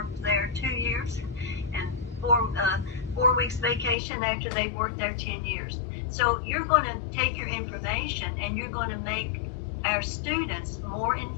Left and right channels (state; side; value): drops out; right; at 4.0 s